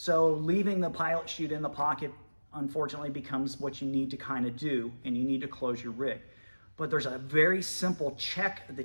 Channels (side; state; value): both; inverted; correlation -1.00